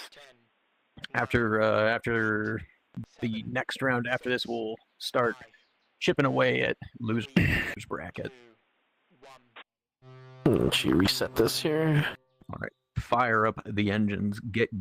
After the next round after this, we'll start chipping away at losers bracket. Let's reset this here. All right, fire up the engines. Get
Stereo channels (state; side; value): identical; both; correlation 1.00